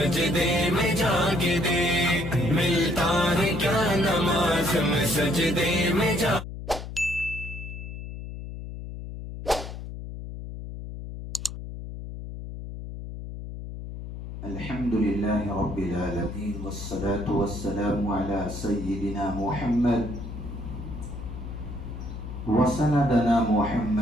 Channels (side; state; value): left; noise; hum, 9 dB below the sound